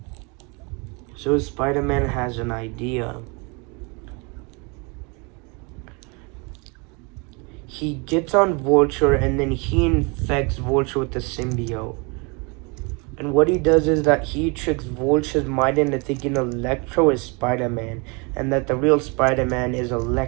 So Spider-Man has an idea. He gets on Vulture, and then he infects Vulture with the symbiote. And what he does is that he tricks Vulture's mind into thinking Electro is Spider-Man, and that the real Spider-Man is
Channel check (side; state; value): left; quieter; 30.8 dB